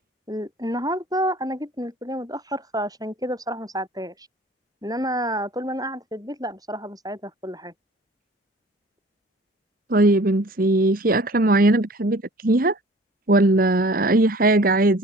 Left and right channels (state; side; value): normal; both; correlation 0.47